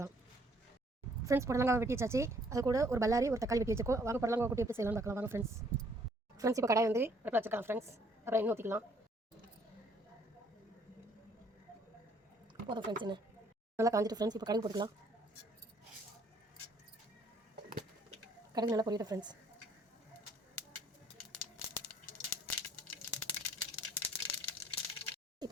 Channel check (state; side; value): normal; both; correlation 0.63